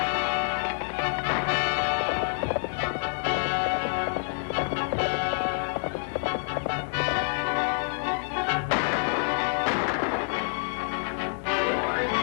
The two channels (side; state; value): right; silent; digital silence